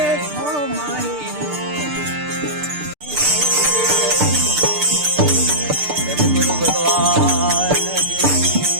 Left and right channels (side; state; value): left; late; 6.7 ms